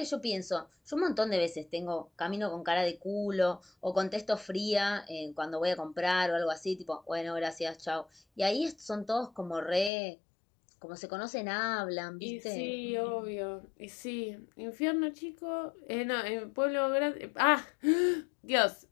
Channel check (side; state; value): right; drops out; at 9.9 s